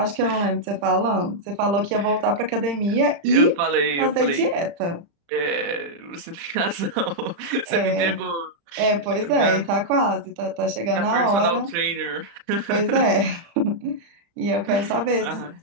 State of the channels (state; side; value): late; left; 35 ms